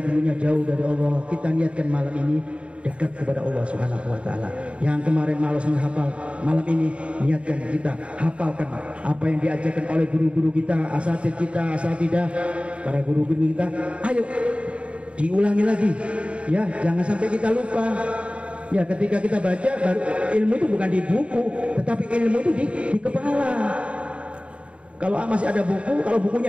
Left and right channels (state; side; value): late; left; 0.060 ms